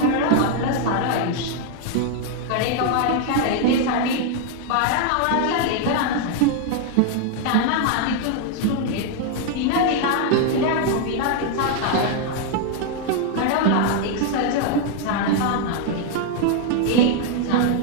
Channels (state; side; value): different; both; correlation 0.00